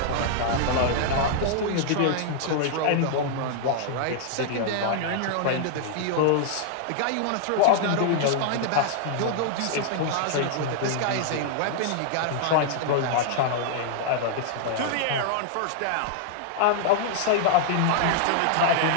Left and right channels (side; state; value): both; different; correlation 0.00